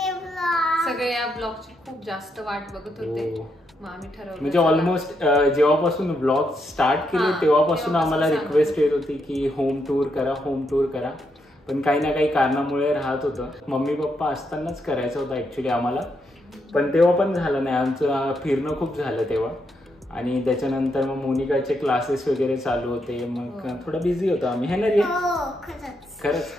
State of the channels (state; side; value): normal; both; correlation 0.80